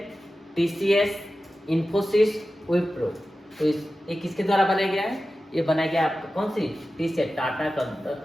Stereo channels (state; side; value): normal; both; correlation 0.94